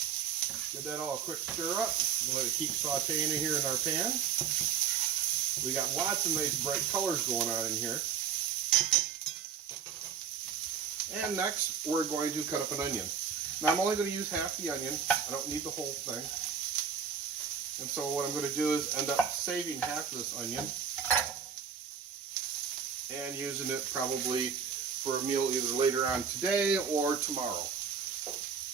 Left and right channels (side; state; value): left; quieter; 7.2 dB